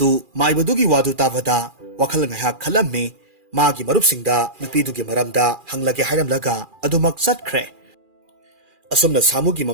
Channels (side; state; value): left; late; 2.4 ms